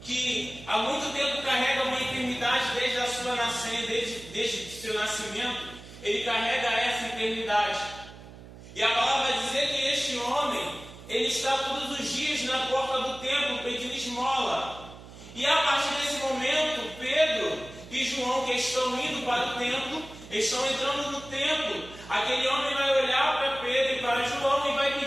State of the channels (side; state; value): right; noise; hum, 17 dB below the sound